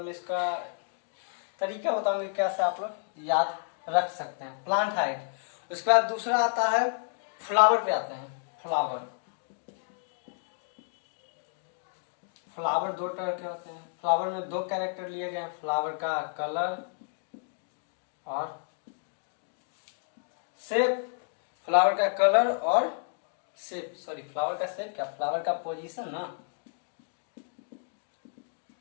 में इसका तरीका बताऊंगा कैसे आप लोग याद रख सकते हैं। Plant height. उसके बाद दूसरा आता है फ्लावर पे आते हैं। फ्लावर 2 तरह के होते हैं। फ्लावर में 2 कैरेक्टर लिए गए हैं, फ्लावर का कलर और शेप। फ्लावर का कलर और शेप, फ्लावर का शेप क्या? फ्लावर का पोजीशन ना,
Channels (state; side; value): silent; right; digital silence